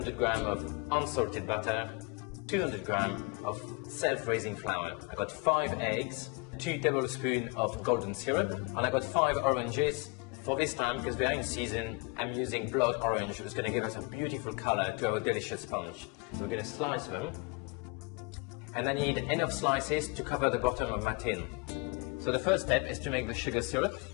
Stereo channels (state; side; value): quieter; right; 29.1 dB